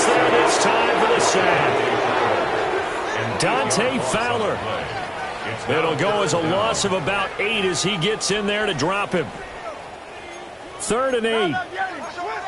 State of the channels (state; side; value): identical; both; correlation 1.00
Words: there this time for the sack. Dante Fowler. It'll go as a loss of about 8 as he gets in there to drop him. 3rd and 8.